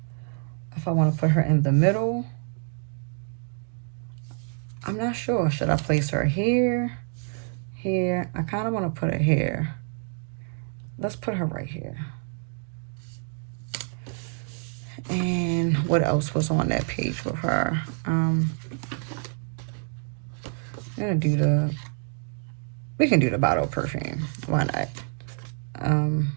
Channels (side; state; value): left; silent; 55 dB below the other